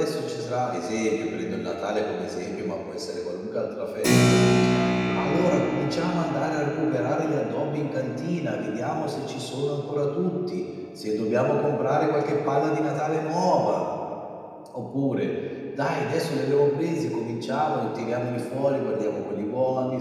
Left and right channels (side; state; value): both; identical; correlation 1.00